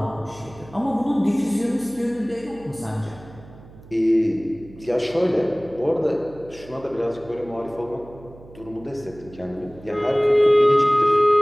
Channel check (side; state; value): right; noise; hum, 20 dB below the sound